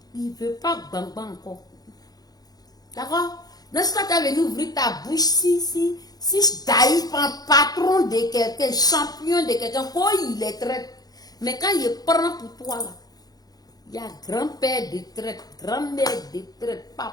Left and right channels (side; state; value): right; late; 0.19 ms